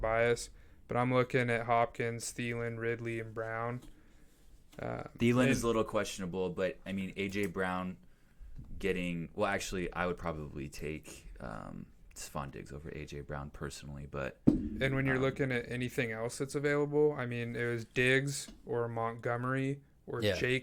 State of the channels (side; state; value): both; identical; correlation 1.00